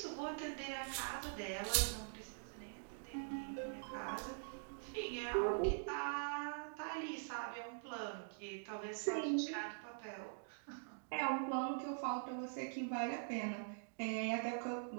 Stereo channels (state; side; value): silent; left; digital silence